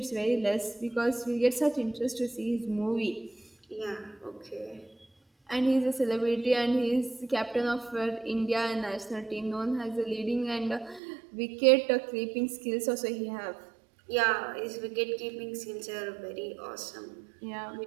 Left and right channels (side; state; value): left; drops out; at 11.0 s